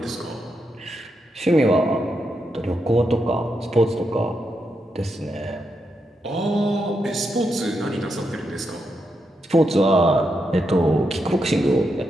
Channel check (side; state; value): both; normal; correlation 0.83